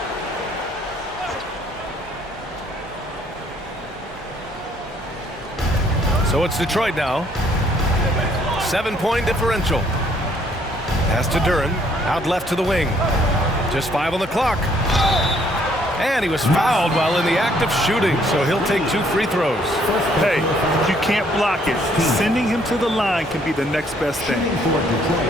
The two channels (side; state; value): both; normal; correlation 0.65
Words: So it's Detroit now. 7-point differential. Pass to Duren. Out left to the wing. Just 5 on the clock. And he was fouled while in the act of shooting, so he'll take 2 free throws. Hey, you can't block it. Sending him to the line can be the next best thing.